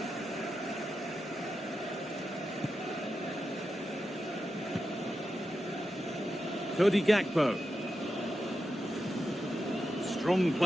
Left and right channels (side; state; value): both; normal; correlation 0.89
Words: Cody Gakpo. Strong